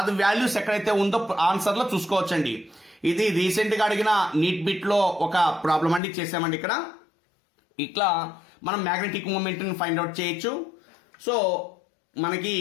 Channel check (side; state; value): right; drops out; at 6.0 s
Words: వాల్యూస్ ఎక్కడైతే ఉందో ఆన్సర్ లో చూసుకోవచ్చండి. ఇది రీసెంట్ గా అడిగిన నీట్ బిట్ లో ఒక ప్రాబ్లం అండి, చేసామండి ఇక్కడ. ఇట్లా మనం మ్యాగ్నెటిక్ మూమెంట్ ని ఫైండ్ అవుట్ చేయొచ్చు. సో మనకి